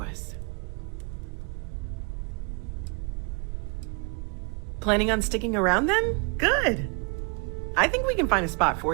us. Planning on sticking around then? Good. I think we can find a spot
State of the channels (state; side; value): quieter; left; 33.1 dB